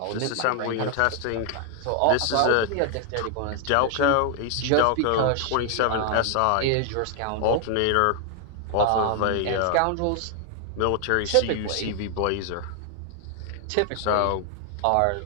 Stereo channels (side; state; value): both; different; correlation 0.00